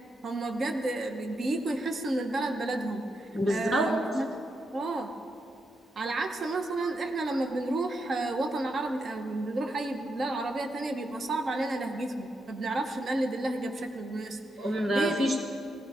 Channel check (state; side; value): normal; both; correlation 0.83